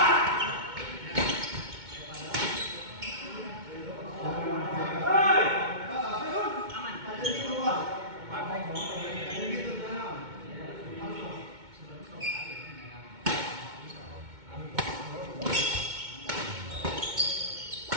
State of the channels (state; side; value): late; left; 2.2 ms